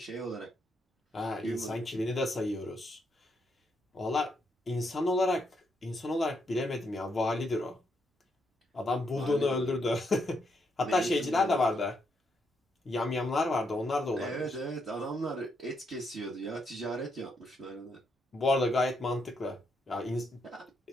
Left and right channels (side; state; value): both; normal; correlation 0.78